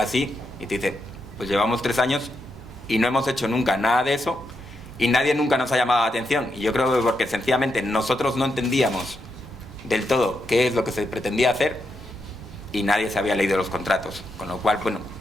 y te dice, pues llevamos 3 años y no hemos hecho nunca nada de eso y nadie nunca nos ha llamado la atención. Y yo creo que porque sencillamente nosotros no entendíamos del todo qué es lo que se pretendía hacer y nadie se había leído los contratos. Con lo cual, bueno,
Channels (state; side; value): normal; both; correlation 0.83